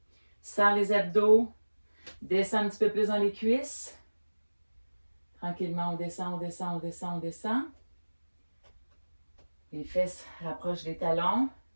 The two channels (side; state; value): both; inverted; correlation -1.00